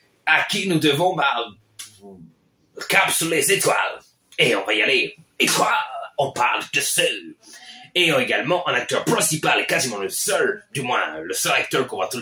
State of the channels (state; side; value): identical; both; correlation 1.00